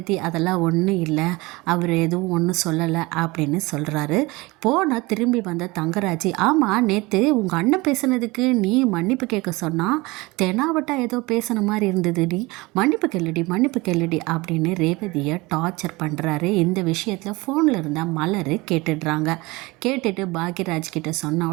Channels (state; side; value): quieter; left; 23.0 dB